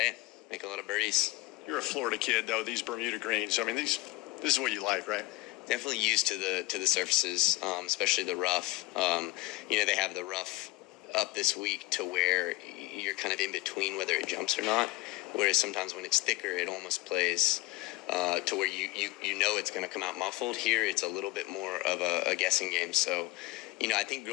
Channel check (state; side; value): quieter; right; 20.1 dB